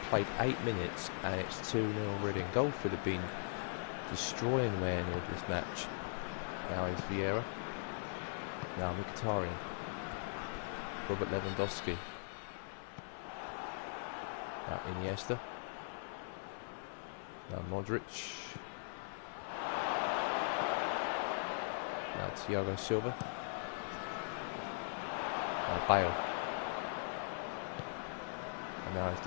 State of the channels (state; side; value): silent; right; 51 dB below the other